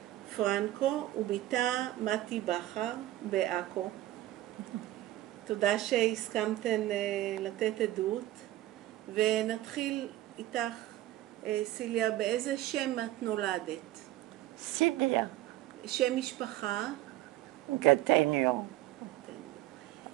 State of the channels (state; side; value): quieter; left; 15.5 dB